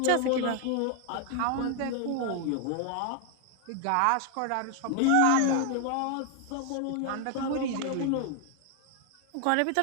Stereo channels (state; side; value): different; both; correlation 0.01